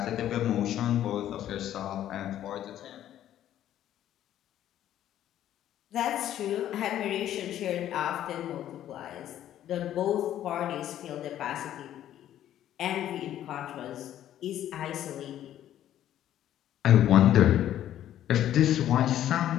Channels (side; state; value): right; quieter; 11.8 dB